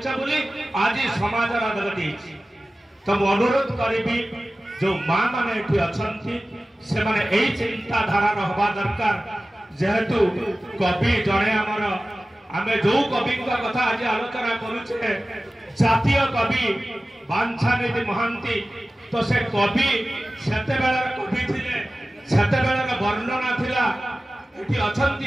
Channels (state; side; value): normal; both; correlation 0.96